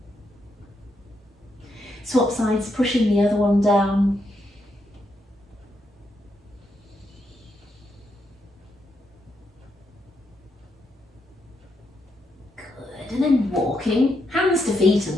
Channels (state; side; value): normal; both; correlation 0.80